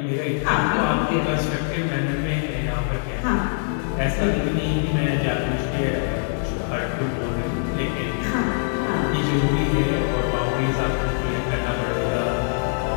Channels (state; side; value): silent; right; digital silence